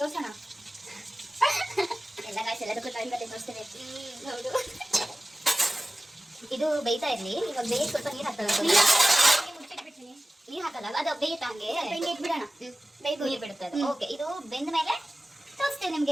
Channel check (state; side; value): normal; both; correlation 0.96